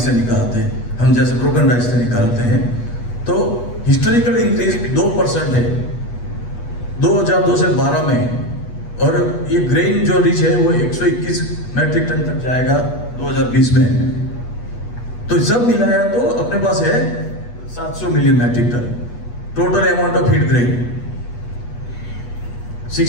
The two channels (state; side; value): late; right; 8.3 ms